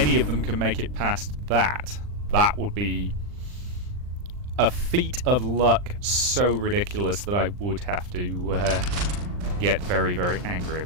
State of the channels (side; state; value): left; late; 39 ms